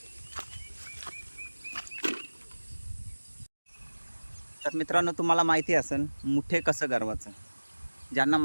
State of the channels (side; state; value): both; inverted; correlation -1.00